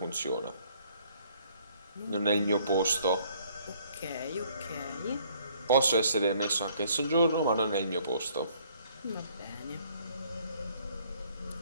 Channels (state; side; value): inverted; both; correlation -0.62